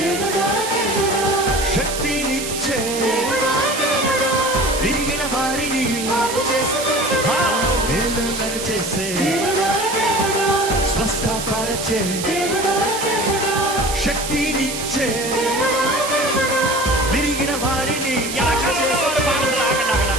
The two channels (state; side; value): noise; right; hiss, 6 dB below the sound